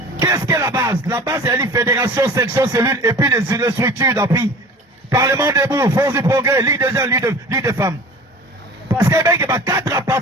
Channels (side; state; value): both; normal; correlation 0.41